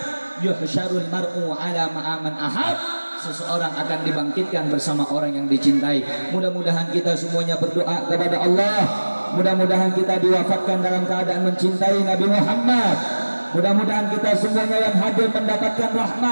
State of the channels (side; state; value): both; inverted; correlation -1.00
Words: yuhsyarul mar'u ala ma'aman ahab. Seseorang akan dibangkitkan bersama orang yang dicintai. Mudah-mudahan kita semuanya berdoa kepada Allah. Mudah-mudahan kita diwafatkan dalam keadaan mencintai Nabi Muhammad. Mudah-mudahan kita semuanya yang hadir mendapatkan